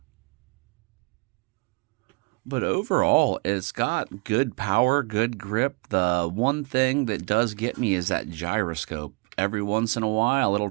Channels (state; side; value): quieter; left; 29.8 dB